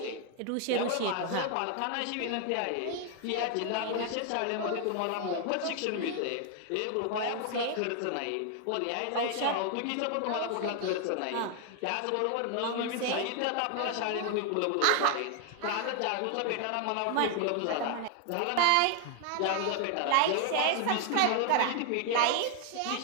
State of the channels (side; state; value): both; different; correlation 0.00